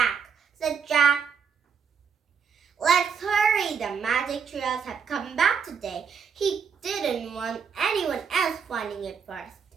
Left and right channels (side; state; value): left; quieter; 6.6 dB